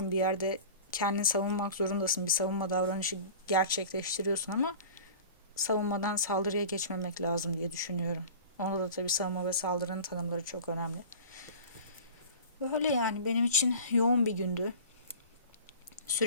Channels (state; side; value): inverted; both; correlation -0.39